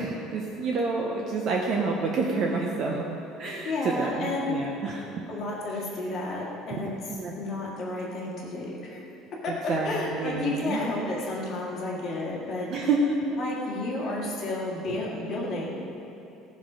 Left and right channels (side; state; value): both; normal; correlation 0.51